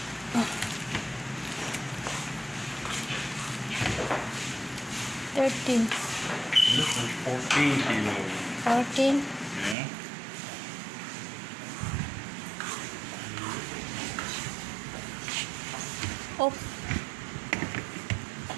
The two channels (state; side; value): drops out; left; at 9.8 s